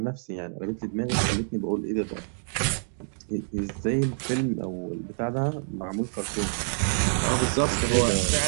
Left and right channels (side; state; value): left; silent; digital silence